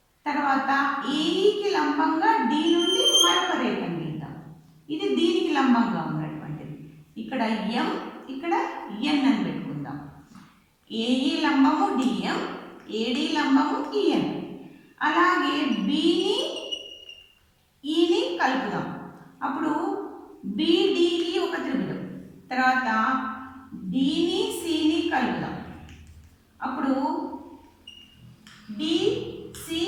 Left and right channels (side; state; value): both; identical; correlation 1.00